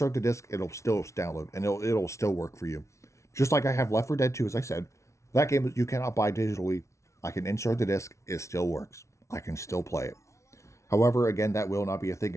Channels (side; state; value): right; late; 0.14 ms